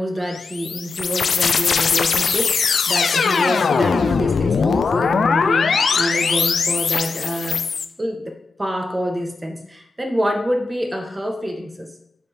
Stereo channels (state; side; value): quieter; right; 3.7 dB